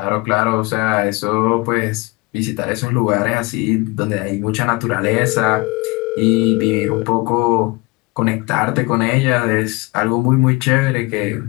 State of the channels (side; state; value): right; quieter; 25.4 dB